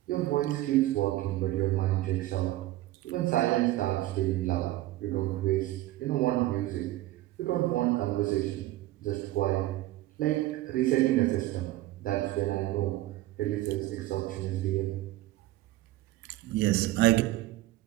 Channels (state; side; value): quieter; left; 16.4 dB